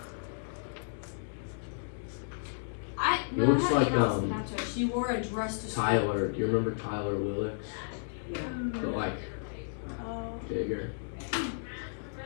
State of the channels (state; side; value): silent; right; digital silence